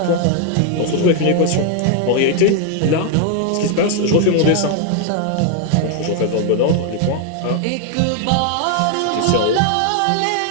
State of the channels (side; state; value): both; different; correlation 0.00